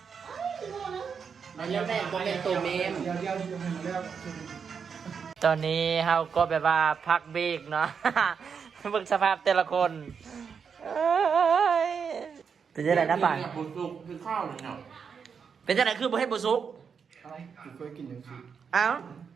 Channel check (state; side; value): quieter; left; 6.4 dB